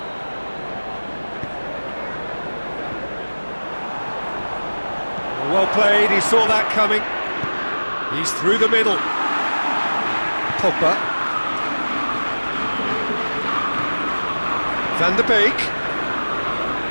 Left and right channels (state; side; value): inverted; both; correlation -1.00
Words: Well played, he saw that coming. He's through the middle. Pogba. Van der Beek.